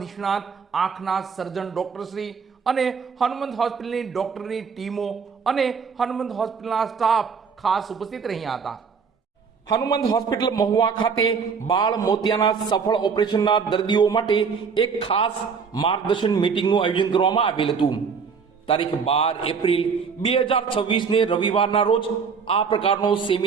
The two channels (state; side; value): quieter; left; 5.8 dB